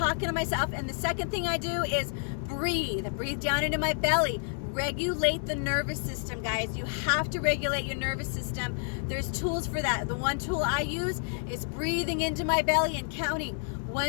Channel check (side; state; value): right; silent; 58 dB below the other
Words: to myself. And the second thing I do is breathe down into my belly. Regulate the nervous system, guys. You have to regulate your nervous system. There's tools for that. The one tool I use is breathing into my belly and counting